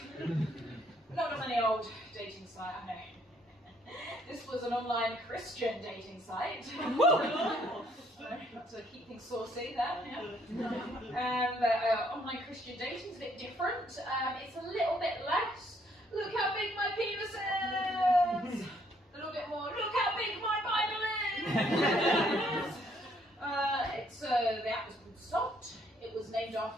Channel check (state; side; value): normal; both; correlation 0.67